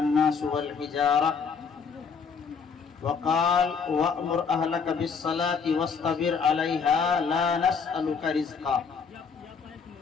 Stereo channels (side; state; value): right; quieter; 5.7 dB